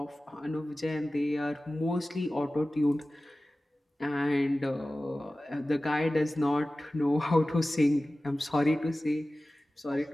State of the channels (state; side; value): normal; both; correlation 0.96